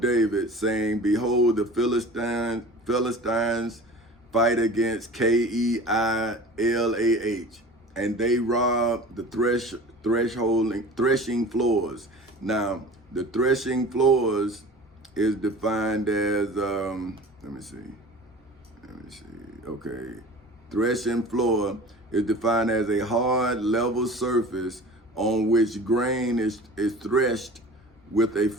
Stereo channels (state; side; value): normal; both; correlation 0.40